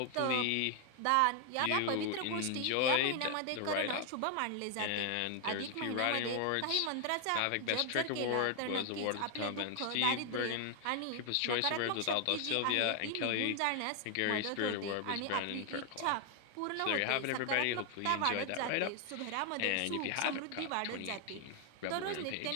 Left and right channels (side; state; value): both; different; correlation 0.00